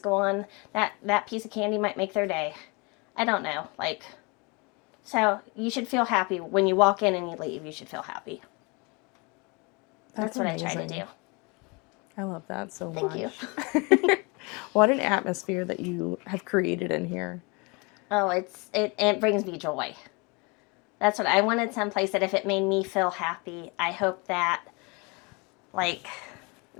on. That piece of candy might make their day. I don't know. Like, so you should feel happy when you walk in and you leave. You should feel happy. That's what amazing. I try to do. I love that so much. Thank you. What an atmosphere that you have created in here. Oh, it brings me joy. That's what I wanted, someplace that if it made me feel happy, I hope that, like,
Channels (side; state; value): right; quieter; 29.2 dB